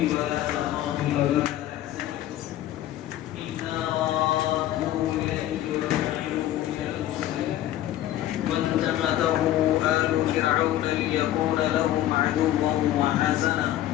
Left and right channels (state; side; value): quieter; right; 13.3 dB